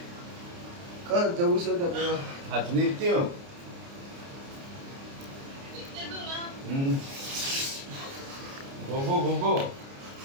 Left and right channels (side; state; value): left; late; 29 ms